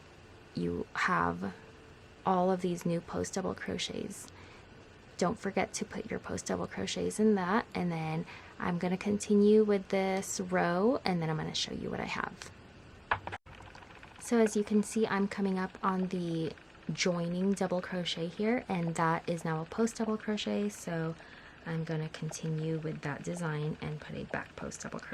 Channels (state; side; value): identical; both; correlation 1.00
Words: you have all of these new post double crochets. Don't forget to put your post double crochets in that, and then I'm going to continue with this row, and then I'm going to show you what I have. So as you can see, I'm coming up on the joining double crochet here, and that is now a post double crochet, so I'm going to continue with that design and put a back post double